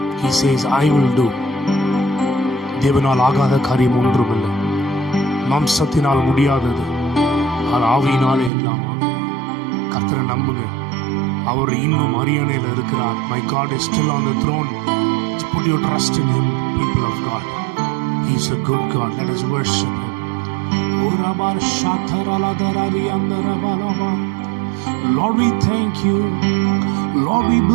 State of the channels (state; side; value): drops out; left; at 8.5 s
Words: He says, I will do. தேவனால் ஆகாத காரியம் ஒன்றுமில்லை. மாம்சத்தினால் முடியாதது அது ஆவியினாலே எல்லாம் கர்த்தரை நம்புங்க. அவர் இன்னும் அரியணையில் இருக்கிறார். My God is still on the throne. Put your trust in Him, people of God. He is a good God. Let us worship Him. Lord, we thank you. Lord, we